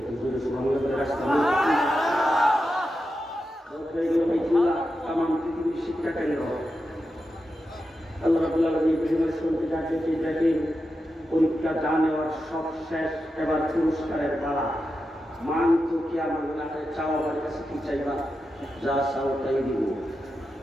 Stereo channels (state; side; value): normal; both; correlation 0.89